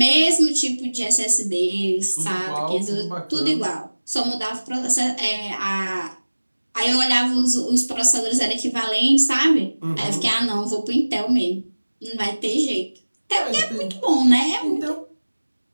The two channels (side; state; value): both; inverted; correlation -1.00